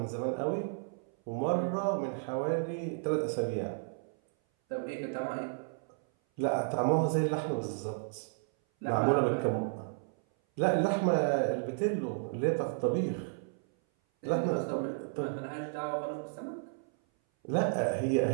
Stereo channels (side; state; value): left; silent; 56 dB below the other